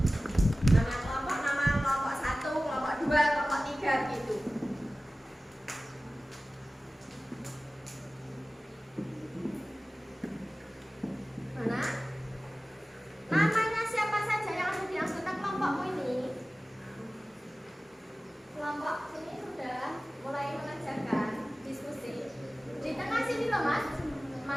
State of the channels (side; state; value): both; normal; correlation 0.96